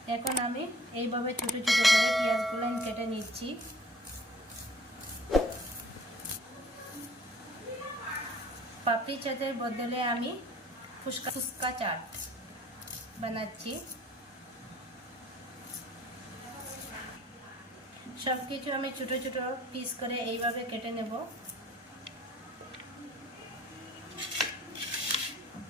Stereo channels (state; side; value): normal; both; correlation 0.52